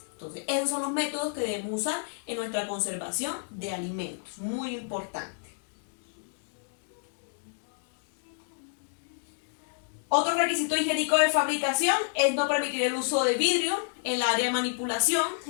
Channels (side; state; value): right; silent; digital silence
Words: Entonces, esos son los métodos que debemos usar en nuestra conservación de alimentos. Muy importante. Otro requisito higiénico de fabricación es no permitir el uso de vidrio en el área de manipulación.